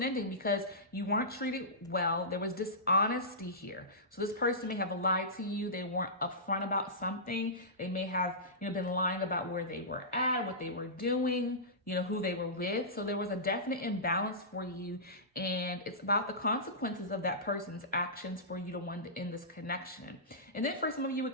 ending because you weren't treated well. There was dishonesty here. So this person may have lied to you. They weren't upfront about something. They may have, been lying about where they were at, what they were doing, who they were with. So there was a definite imbalance for you. And it's about the consequences of that person's actions for you to want to end this connection. And then for some of you,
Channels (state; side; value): normal; both; correlation -0.19